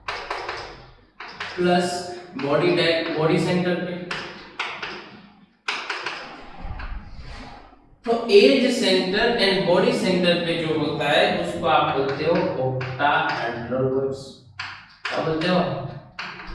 प्लस बॉडी सेंटर पे। तो edge centre and body centre पे जो होता है उसको आप बोलते हो ऑक्टाहेड्रल। क्या बोलते हो?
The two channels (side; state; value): both; identical; correlation 1.00